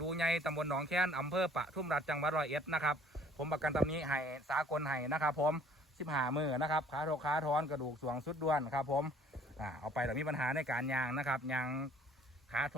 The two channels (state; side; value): normal; both; correlation 0.56